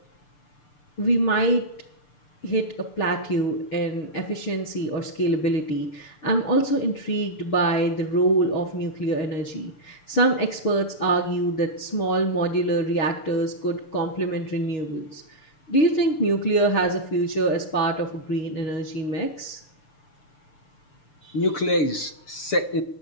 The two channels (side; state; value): right; late; 6.8 ms